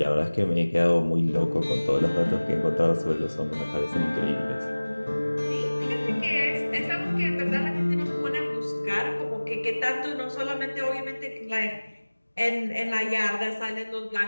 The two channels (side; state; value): both; inverted; correlation -1.00